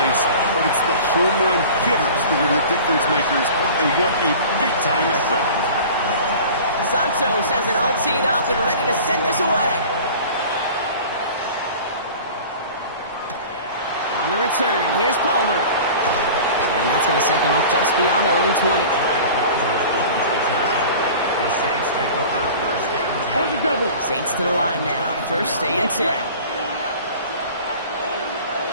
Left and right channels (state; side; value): inverted; both; correlation -0.40